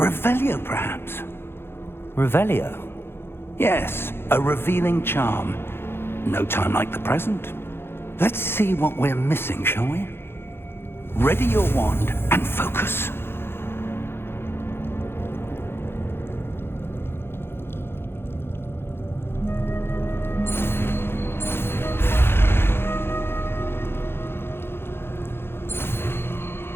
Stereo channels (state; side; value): late; right; 0.11 ms